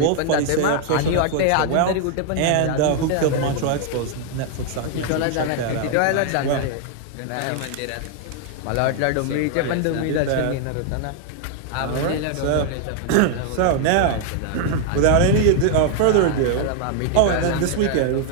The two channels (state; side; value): different; both; correlation 0.00